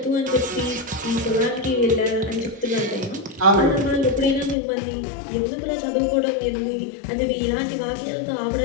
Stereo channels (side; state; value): right; drops out; at 4.5 s